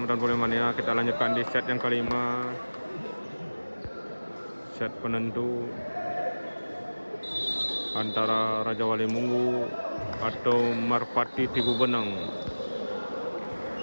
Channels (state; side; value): inverted; both; correlation -1.00